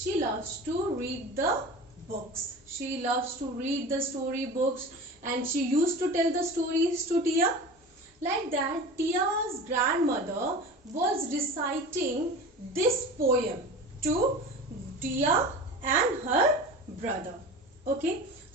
loves to read the books. She loves to read the story books, and she used to tell the stories to Tia. Like that, Tia's grandmother was reciting this poem to Tia and her brother. Okay,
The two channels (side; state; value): both; normal; correlation 0.34